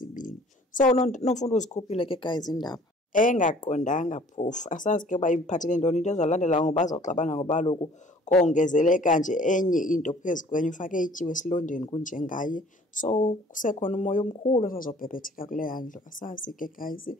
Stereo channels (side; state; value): both; normal; correlation 0.53